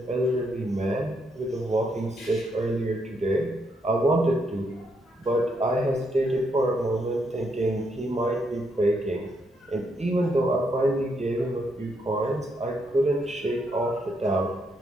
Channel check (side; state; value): both; normal; correlation 0.77